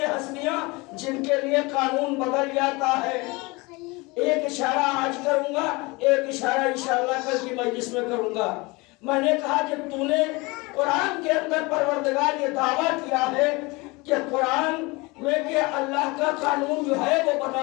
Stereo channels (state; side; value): quieter; right; 24.9 dB